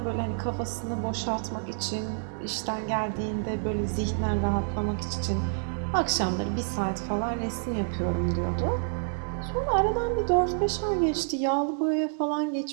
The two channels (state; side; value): silent; left; digital silence